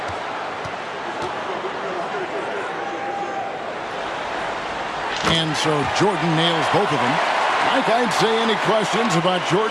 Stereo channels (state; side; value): identical; both; correlation 1.00